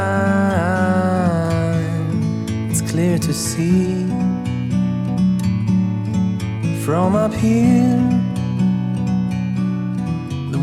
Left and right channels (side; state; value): both; identical; correlation 1.00